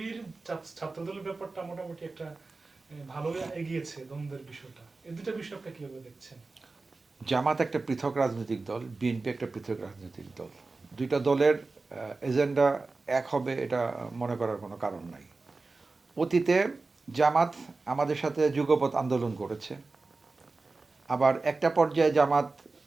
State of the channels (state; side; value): quieter; left; 3.7 dB